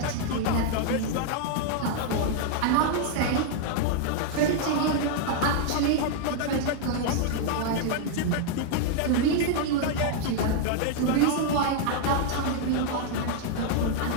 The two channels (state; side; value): different; both; correlation 0.00